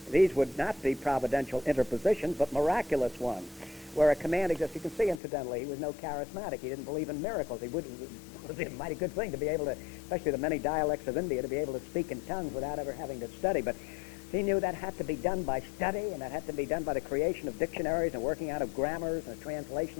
these would not be providential interpositions, but miraculous ones, where a command exists. You can see, incidentally, he was no charismatic. He didn't believe in miracles. It was a mighty good thing to be able to, especially the many dialects of India, to be able to speak in tongues without ever having to study. But he knew that had to be done by study, and that had to be done by the creation of dictionaries and working out of grammars and the translation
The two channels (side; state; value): right; drops out; at 5.2 s